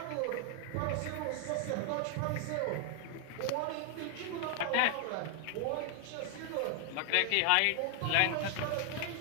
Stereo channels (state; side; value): different; both; correlation 0.00